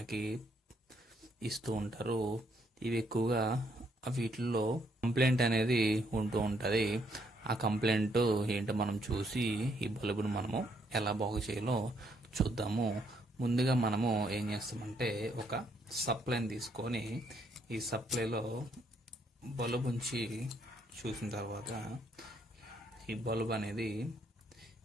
ఇస్తూ ఉంటారు. ఇవి ఎక్కువగా వీటిల్లో కంప్లైంట్ అనేది ఉంటూ ఉంటుంది. ఆ కంప్లైంట్ ఏంటో మనం చూసి ఈ బల్బును మనము ఎలా బాగు చేయాలో చూద్దాము. ముందుగా మనము ఏం చేస్తామంటే ఒక సప్లైని తీసుకొని ఈ సప్లైలో బల్బ్ ఉంచి చూసిన తర్వాత ఈ బల్బ్ అనేది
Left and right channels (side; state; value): both; normal; correlation 0.72